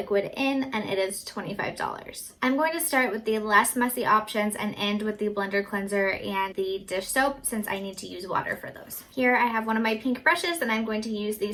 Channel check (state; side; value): identical; both; correlation 1.00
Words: in, and it is $25. I'm going to start with the less messy options and end with the blender cleanser and the dish soap since I need to use water for those. Here I have one of my pink brushes and I'm going to use the